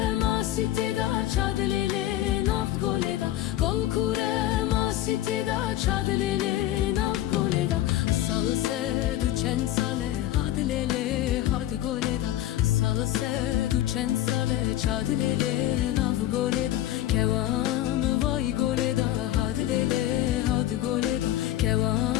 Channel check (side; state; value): right; quieter; 13.7 dB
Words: masî têda çend dilê nav'd goleda. Gol kure masî têda çend dilê nav'd goleda. Îsal du çend sale had lêlê had goleda. Îsal du çend sale çend lêlê nav'd goleda. Kewa vay goleda had lêlê had goleda. Kewa